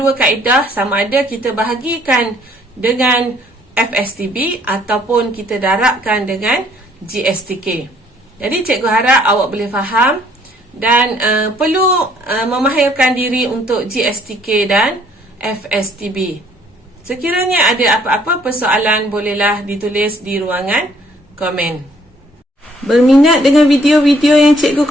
kaedah, sama ada kita bahagikan dengan FSTB ataupun kita darabkan dengan GSTK. Jadi cikgu harap awak boleh faham dan perlu memahirkan diri untuk GSTK dan FSTB. Sekiranya ada apa-apa persoalan, bolehlah ditulis di ruangan komen. Berminat dengan video-video yang cikgu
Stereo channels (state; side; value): normal; both; correlation 0.63